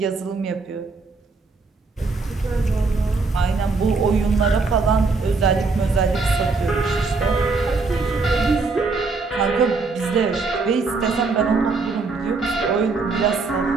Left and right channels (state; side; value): quieter; left; 4.0 dB